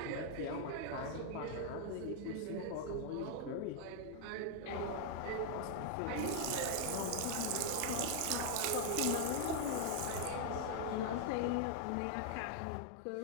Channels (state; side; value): different; both; correlation 0.00